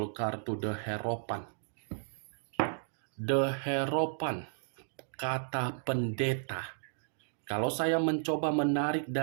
kartu The Hierophant. The Hierophant, kata pendeta. Kalau saya mencoba menarik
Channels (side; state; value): left; silent; digital silence